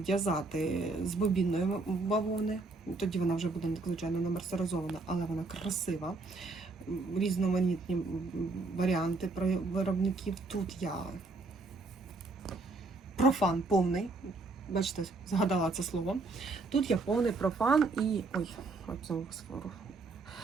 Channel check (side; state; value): left; quieter; 3.5 dB